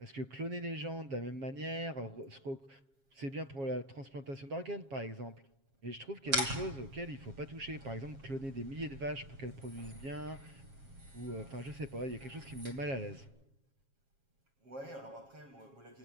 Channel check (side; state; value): left; late; 7.4 ms